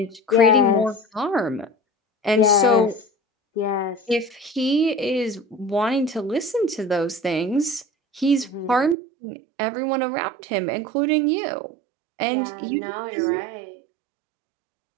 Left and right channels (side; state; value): left; drops out; at 9.0 s